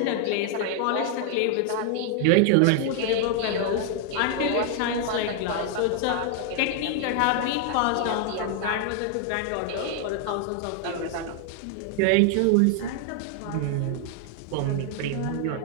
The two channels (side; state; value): both; different; correlation 0.00